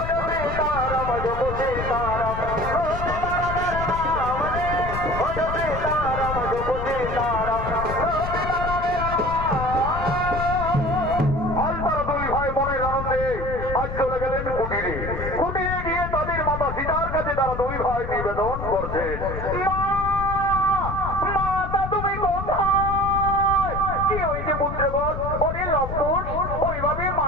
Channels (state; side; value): noise; left; rumble, 6 dB below the sound